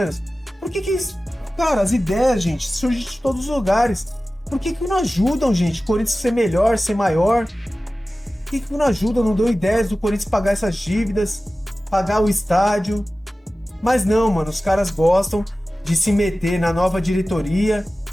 Por que eles... Cara, as ideias, gente, surgem de todos os lugares. Por que não ajudam, gente? O Corinthians ser melhor, ser maior? Por que não ajudam, não dão ideias do Corinthians pagar essas dívidas, pagar o estádio? Mas não, mano, os caras gostam de se meter na nova diretoria,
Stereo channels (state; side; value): normal; both; correlation 0.96